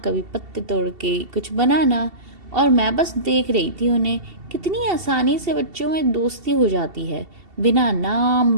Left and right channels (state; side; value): late; left; 2.7 ms